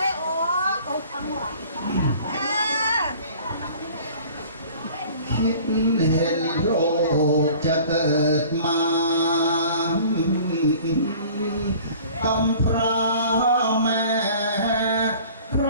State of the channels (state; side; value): inverted; both; correlation -0.48